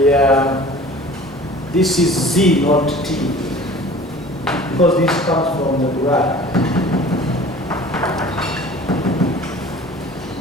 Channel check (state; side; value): normal; both; correlation 0.44